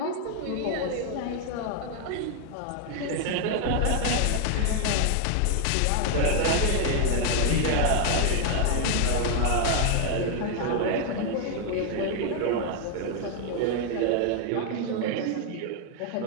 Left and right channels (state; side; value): different; both; correlation 0.00